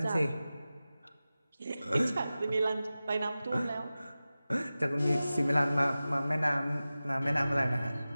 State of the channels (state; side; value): inverted; both; correlation -0.96